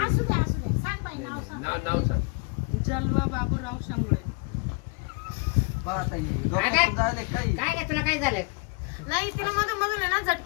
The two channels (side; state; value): right; quieter; 33.1 dB